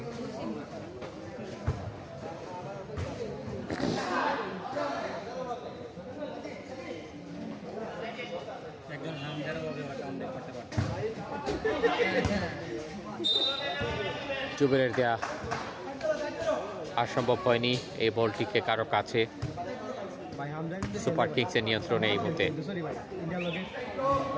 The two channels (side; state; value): both; identical; correlation 1.00